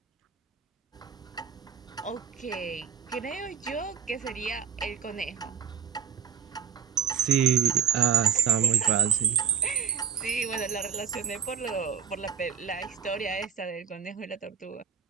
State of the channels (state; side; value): quieter; left; 7.3 dB